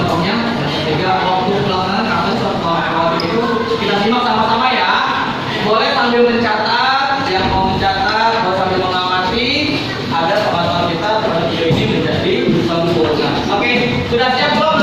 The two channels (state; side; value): identical; both; correlation 1.00